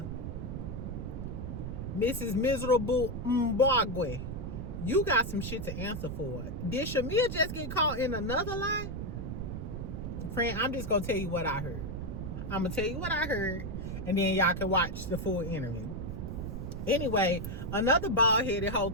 Mrs. Miserable Mbagwe, you got some shit to answer for. Did Shamia just get caught in another lie? Friend, I'm just going to tell you what I heard. I'm going to tell you what I heard, and then y'all can watch the full interview. Anyway, another bald-headed hoe,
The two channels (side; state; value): right; noise; rumble, 5 dB below the sound